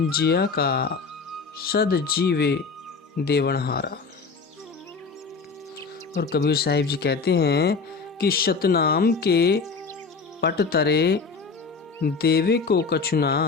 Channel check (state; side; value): quieter; right; 4.8 dB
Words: का सद जीवे देवनहारा। और कबीर साहिब जी कहते हैं कि सतनाम के पट तरे देवे को कछु